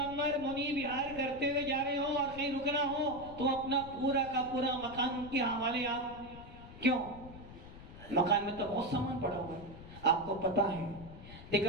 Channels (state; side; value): noise; left; rumble, 16 dB below the sound